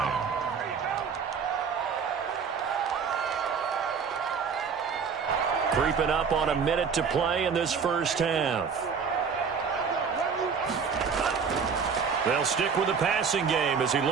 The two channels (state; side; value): quieter; left; 6.1 dB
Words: Creeping up on a minute to play in this first half. They'll stick with the passing game as he